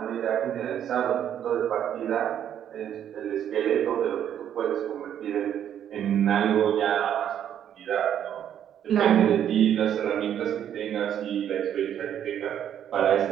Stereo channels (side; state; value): left; quieter; 9.8 dB